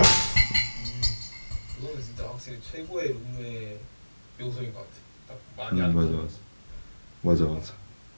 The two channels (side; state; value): both; inverted; correlation -1.00